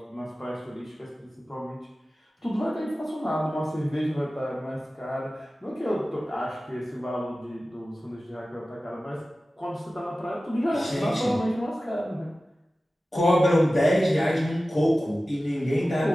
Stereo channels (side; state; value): both; normal; correlation 0.95